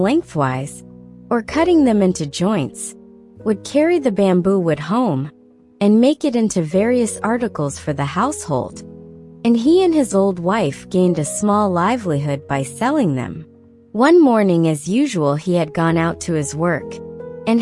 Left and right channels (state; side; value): identical; both; correlation 1.00